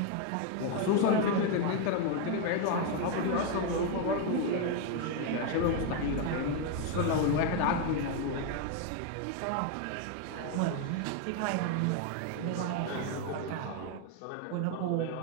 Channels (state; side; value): different; both; correlation 0.01